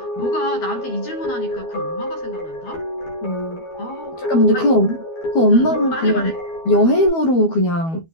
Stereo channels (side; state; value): right; late; 12 ms